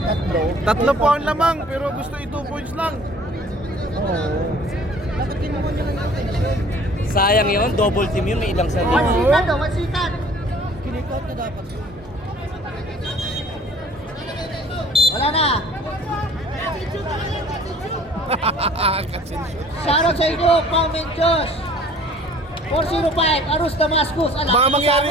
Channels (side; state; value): both; normal; correlation 0.52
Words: Tatlo po ang lamang, pero gusto 2 points lang. Bakit kinuha niya lang yung attention? Sayang yun, double team yun, may ilang sa One second daw, 1 second. Kinikot na dapat yun. Wala na. Kasi Shoutout sa inyo, comment Josh. 405, Arus Damascus.